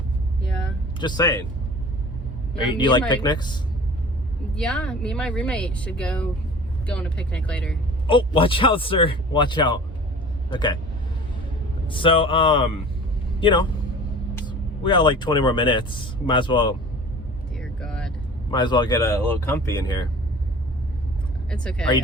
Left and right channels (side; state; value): both; normal; correlation 0.42